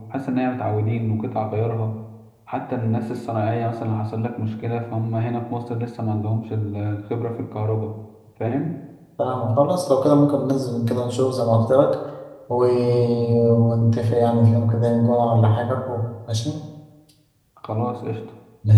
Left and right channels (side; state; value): both; identical; correlation 1.00